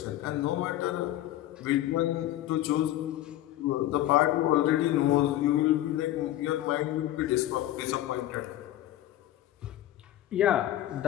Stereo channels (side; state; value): right; quieter; 14.0 dB